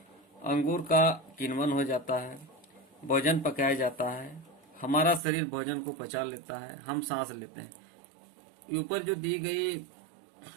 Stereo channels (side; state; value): left; drops out; at 5.2 s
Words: अंगूर का किण्वन हो जाता है, भोजन पकाया जाता है, हमारा शरीर भोजन को पचा लेता है, हम सांस लेते हैं। ऊपर जो दी गई